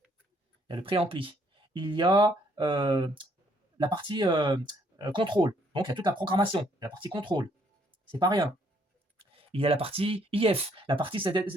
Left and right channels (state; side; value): normal; both; correlation 0.67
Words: il y a la partie contrôle, donc il y a toute la programmation, la partie contrôle, c'est pas rien. Il y a la partie IF, la partie